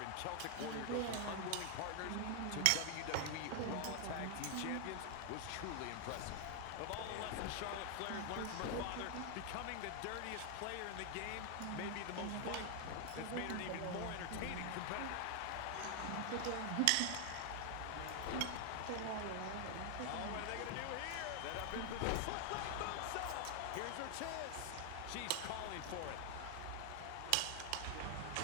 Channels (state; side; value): different; both; correlation 0.00